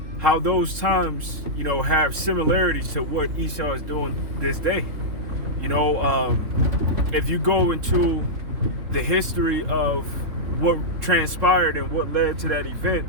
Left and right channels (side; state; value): left; late; 3.7 ms